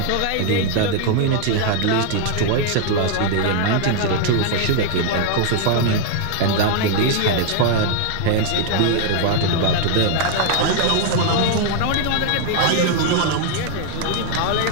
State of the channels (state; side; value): different; both; correlation 0.00